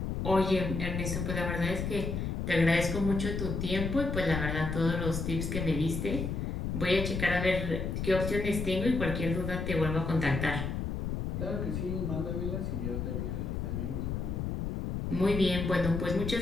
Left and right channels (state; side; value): noise; left; rumble, 2 dB below the sound